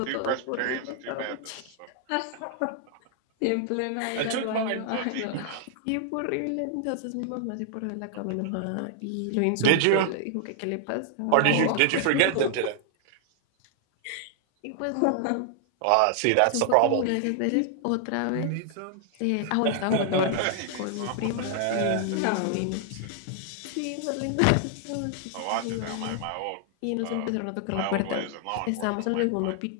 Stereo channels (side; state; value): both; different; correlation -0.01